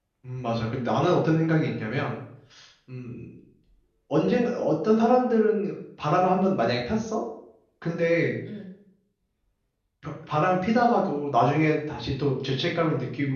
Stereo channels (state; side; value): identical; both; correlation 1.00